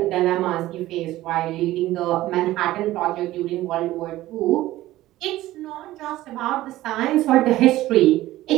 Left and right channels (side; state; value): left; quieter; 15.9 dB